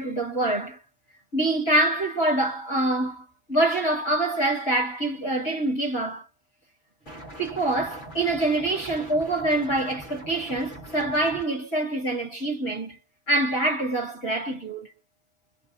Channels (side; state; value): right; late; 5.6 ms